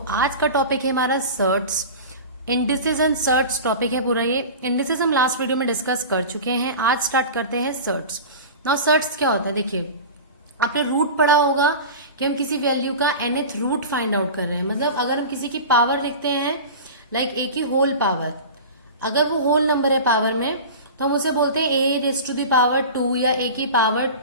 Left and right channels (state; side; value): inverted; both; correlation -0.32